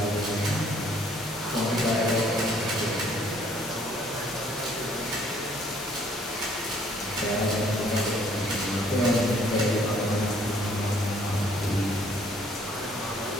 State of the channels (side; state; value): both; normal; correlation 0.62